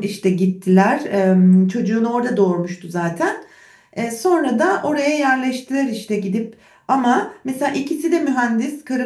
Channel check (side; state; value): both; identical; correlation 1.00